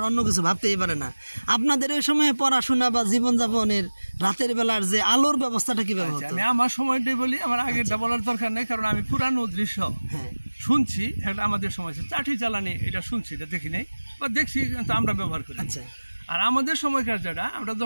অন্য কিছু ভাবতেই পারে না। আপনাদের ওই সময় পড়াশোনা বা জীবনযাপনের রাতের বেলার যে আলোর ব্যবস্থাটা কিভাবে হতো? আমি আমার সময়টাই বলি, আমার আগেরটা বলার দরকার নেই, কারণ আমি পুরানো দৃশ্য শুনছি। এটা আমাদের সময় চাটি জ্বালানি, এটা শুনছি, এটা দেখি নাই বা দেখছি কিন্তু আমরা ব্যবহার করি। আচ্ছা, আর আমাদের সময়কার যেটা, আমরা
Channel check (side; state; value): both; inverted; correlation -1.00